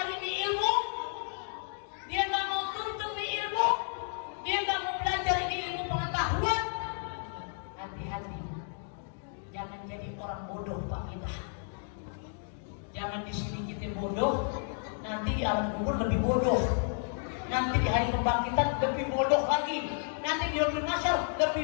di ilmu, dia nggak mau tuntut di ilmu, dia nggak mau belajar di ilmu pengetahuan, hati-hati, jangan jadi orang bodoh Pak kita. Jangan di sini kita bodoh, nanti di alam kubur lebih bodoh. Nanti di hari kebangkitan lebih bodoh lagi. Nanti di yaumul mahsyar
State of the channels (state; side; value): silent; right; 56 dB below the other